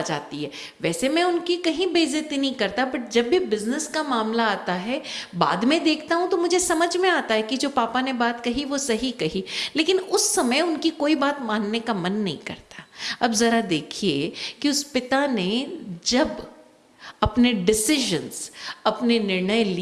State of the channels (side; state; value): both; identical; correlation 1.00